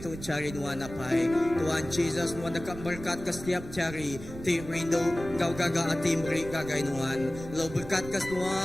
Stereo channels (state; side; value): noise; right; rumble, 13 dB below the sound